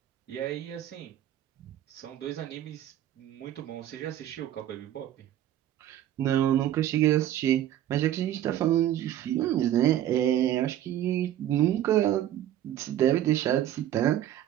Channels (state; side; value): quieter; left; 12.1 dB